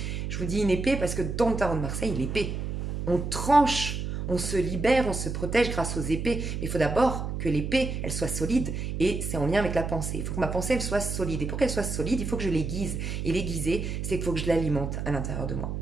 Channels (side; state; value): right; noise; hum, 4 dB below the sound